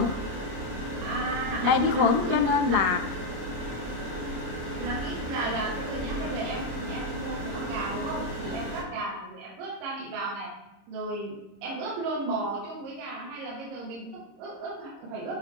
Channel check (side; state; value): left; late; 26 ms